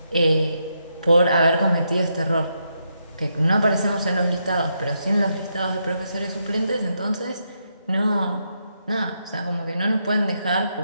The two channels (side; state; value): both; inverted; correlation -0.81